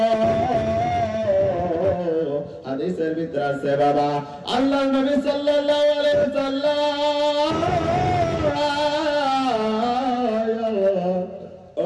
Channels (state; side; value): identical; both; correlation 1.00